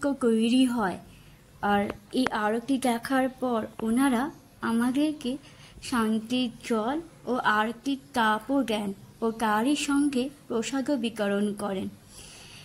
তৈরি হয়। আর এই আরতি দেখার পর ওনারা আমাদেরকে শান্তির জল ও আরতির তাপও দেন ও তারই সঙ্গে প্রসাদও বিতরণ করেন।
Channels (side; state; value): both; identical; correlation 1.00